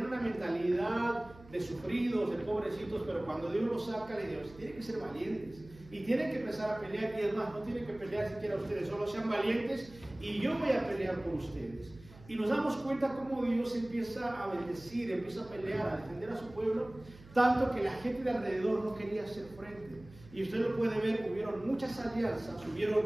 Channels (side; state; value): right; noise; hum, 20 dB below the sound